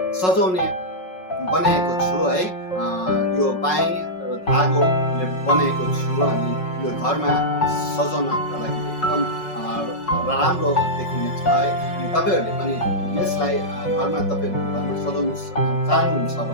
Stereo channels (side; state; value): right; late; 5.4 ms